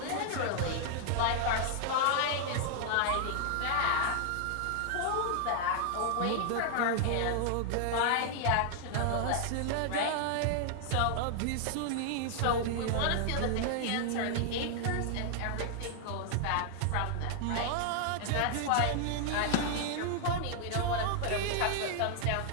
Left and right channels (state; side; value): different; both; correlation 0.00